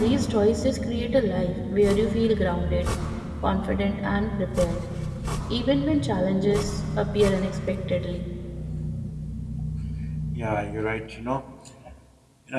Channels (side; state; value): both; identical; correlation 1.00